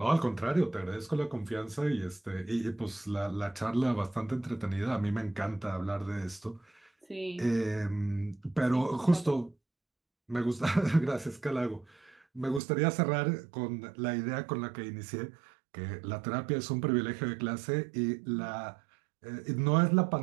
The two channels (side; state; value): left; drops out; at 12.6 s